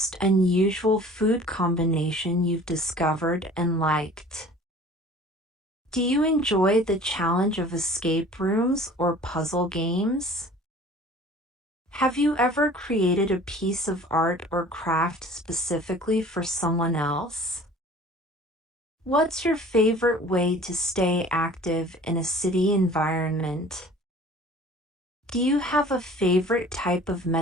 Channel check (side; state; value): both; normal; correlation 0.47